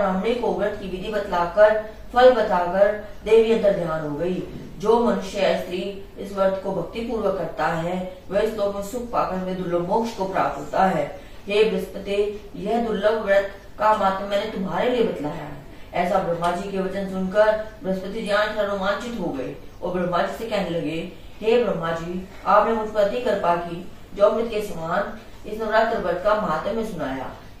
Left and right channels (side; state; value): both; identical; correlation 1.00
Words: को व्रत की विधि बतलाकर फल बताकर देवी अंतर ध्यान हो गई। जो मनुष्य या स्त्री इस व्रत को भक्ति पूर्वक करता है वह इस लोक में सुख पाकर में दुर्लभ मोक्ष को प्राप्त होता है। हे बृहस्पति, यह दुर्लभ व्रत का मात्र मैंने तुम्हारे लिए बतलाया है। ऐसा ब्रह्मा जी के वचन सुनकर बृहस्पति जी रोमांचित हो गए और ब्रह्मा जी से कहने लगे, हे ब्रह्मा जी, आपने मुझ पर अति कृपा की जो अमृत के समान इस नवरात्र व्रत का महात्म्य सुनाया।